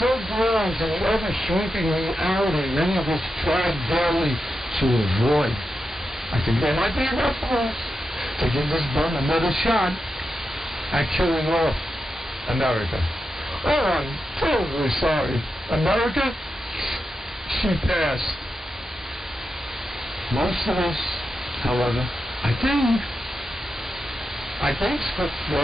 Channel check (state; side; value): normal; both; correlation 0.88